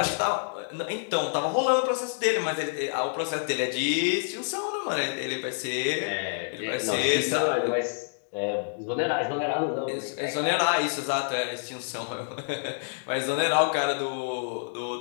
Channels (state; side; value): silent; right; digital silence